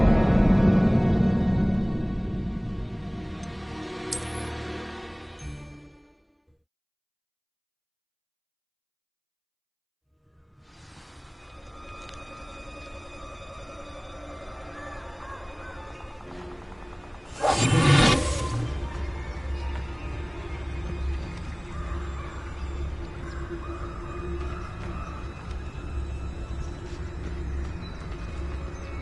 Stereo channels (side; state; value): both; identical; correlation 1.00